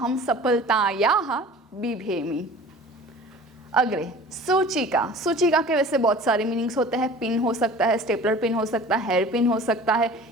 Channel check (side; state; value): both; normal; correlation 0.43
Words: सफलतायाः बिभेमि। अग्रे सूचिका। सूचिका के वैसे बहुत सारे मीनिंग्स होते हैं। पिन हो सकता है, स्टेपलर पिन हो सकता है, हेयर पिन हो सकता है,